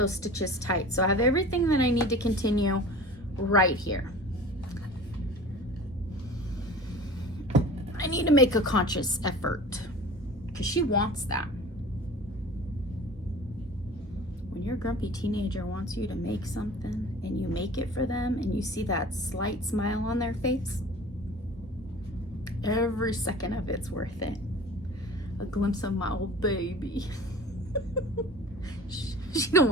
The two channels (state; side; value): normal; both; correlation 0.40